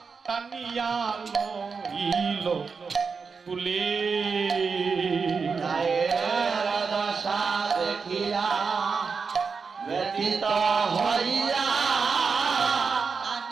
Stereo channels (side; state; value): left; quieter; 5.2 dB